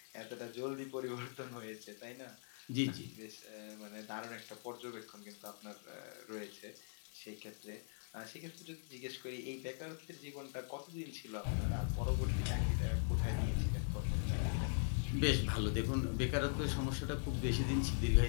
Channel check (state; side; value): silent; right; 50 dB below the other